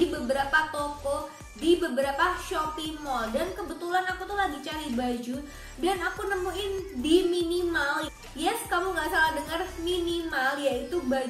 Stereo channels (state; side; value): identical; both; correlation 1.00